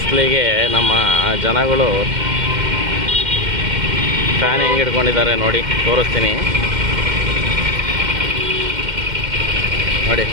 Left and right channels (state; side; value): late; left; 2.1 ms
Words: ನಮ್ಮ ಜನಗಳು ಫ್ಯಾನ್ ಹೆಂಗೆ ಹಿಡ್ಕೊಂಡಿದ್ದಾರೆ ನೋಡಿ, ತೋರಿಸ್ತೀನಿ ನೋಡಿ.